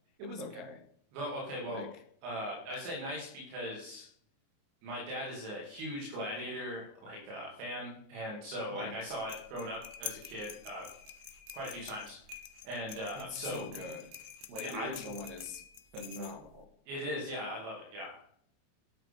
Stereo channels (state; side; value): late; left; 29 ms